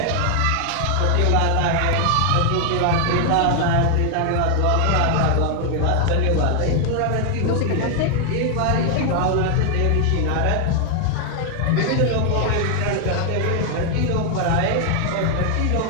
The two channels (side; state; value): both; different; correlation 0.00